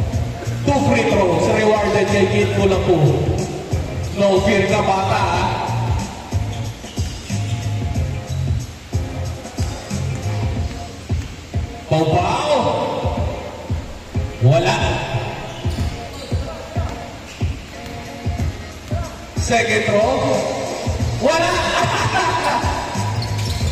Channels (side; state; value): both; identical; correlation 1.00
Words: 2 free throws rewarded kay Kid Kulapu. No fear ka, bata, ha? Pau-Pau! Wala! Second throw. Wala!